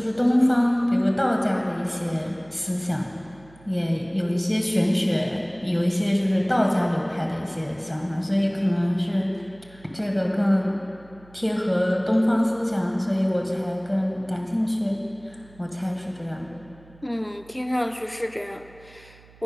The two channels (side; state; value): right; noise; hum, 25 dB below the sound